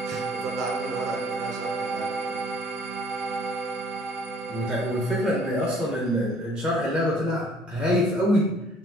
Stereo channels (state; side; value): normal; both; correlation 0.56